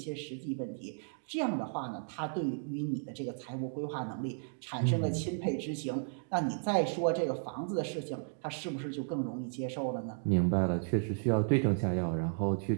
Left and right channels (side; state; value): left; silent; digital silence